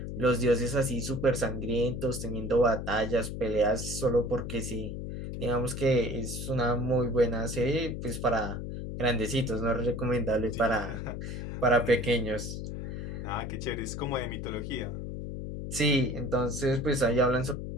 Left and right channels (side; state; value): left; noise; hum, 6 dB below the sound